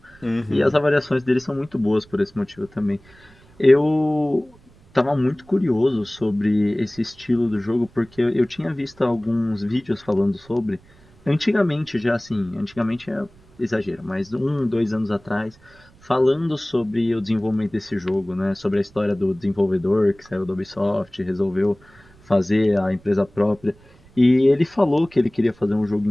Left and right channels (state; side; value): noise; right; rumble, 27 dB below the sound